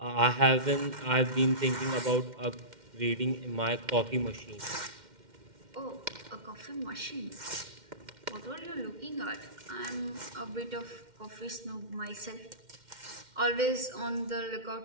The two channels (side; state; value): left; late; 2.1 ms